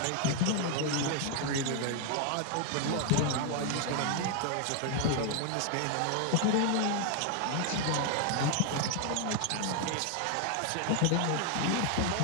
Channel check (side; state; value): both; different; correlation 0.00